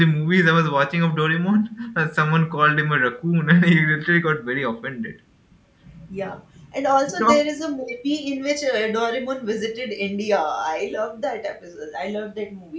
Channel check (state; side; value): identical; both; correlation 1.00